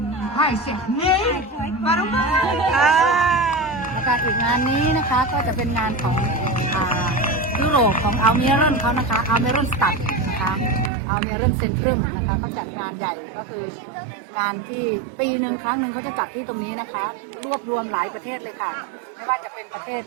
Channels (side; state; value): left; drops out; at 10.9 s